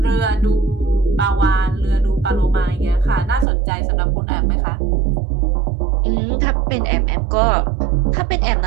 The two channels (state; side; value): drops out; left; at 3.5 s